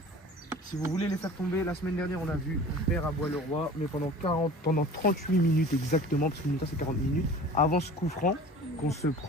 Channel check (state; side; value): normal; both; correlation 0.42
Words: Si vous voulez les faire tomber, la semaine dernière, on a vu, on perd à Bois-le-Roi, mais pendant 38 minutes exactement, parce que mi-temps c'est 40 minutes, avant ce coup franc qu'on se